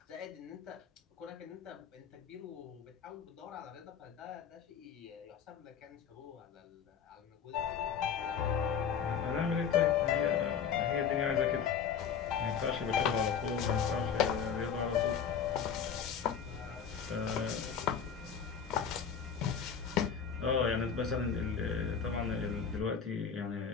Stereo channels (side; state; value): right; quieter; 7.3 dB